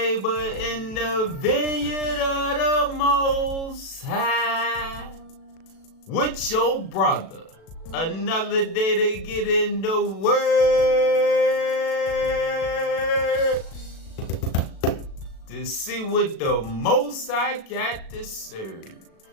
in the vineyard of the Most High. With your brother. Another day to get in the word to see what the Most High got to serve.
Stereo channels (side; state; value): right; late; 36 ms